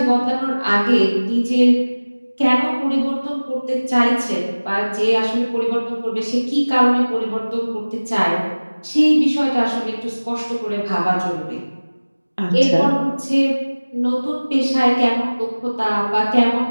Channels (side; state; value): both; inverted; correlation -1.00